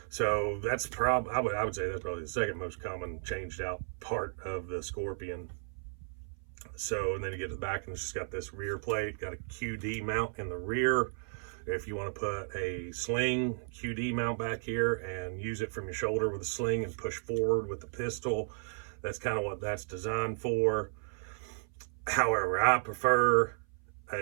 So that's I would say that's probably the second most common changed out part of the Scorpion. So, and then you get to the back and it's just got this rear plate, got a QD mount in the rear. If you want to put a sling QD mount back here and use it from your shoulder with a sling and push forward with the pistol, that's kind of what that's designed for. However, I prefer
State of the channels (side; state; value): left; silent; 55 dB below the other